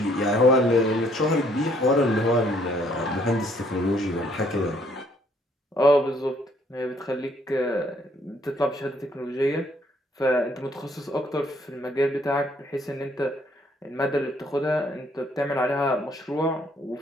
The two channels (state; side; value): normal; both; correlation 0.65